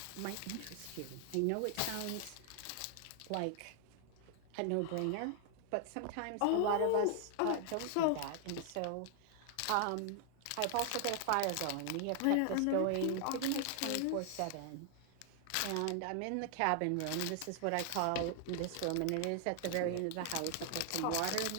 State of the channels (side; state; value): both; different; correlation 0.00